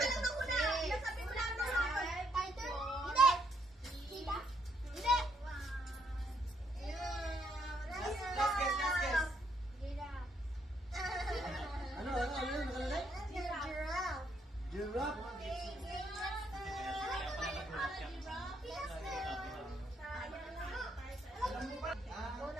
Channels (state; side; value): normal; both; correlation 0.73